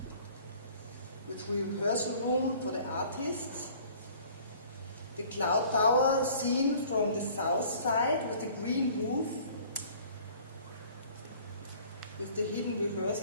with rehearsal room for the artists. The cloud tower seen from the south side with the green roof, with the hidden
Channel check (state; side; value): inverted; both; correlation -0.52